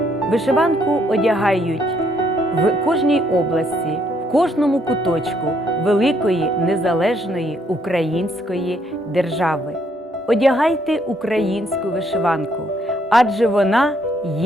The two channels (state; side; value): normal; both; correlation 0.70